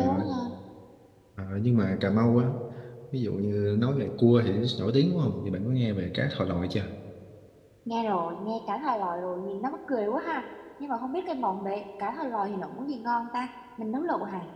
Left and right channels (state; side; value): identical; both; correlation 1.00